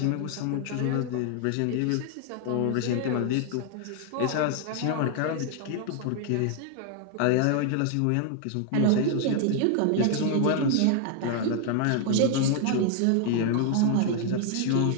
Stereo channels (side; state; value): both; different; correlation 0.00